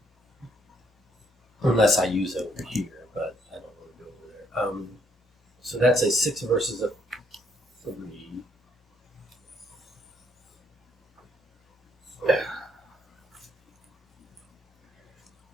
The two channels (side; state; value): both; normal; correlation 0.70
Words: unless I use it over here, but I don't want to go over there. So that's a 6 versus a 3.